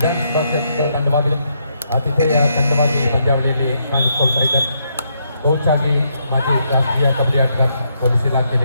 ಕ್ಷೇತ್ರದ ತಂಡವಾಗಿದೆ. ಆತಿಥೇಯ ತಂಡವಾಗಿ ಪಂದ್ಯಾವಳಿಯಲ್ಲಿ ಕಾಣಿಸಿಕೊಳ್ತಾ ಇದ್ದಾರೆ. ಕೋಚ್ ಆಗಿ ಮಾಜಿ ರಾಷ್ಟ್ರೀಯ ಕಬಡ್ಡಿ ಆಟಗಾರ, ಪೊಲೀಸ್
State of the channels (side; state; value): both; inverted; correlation -0.76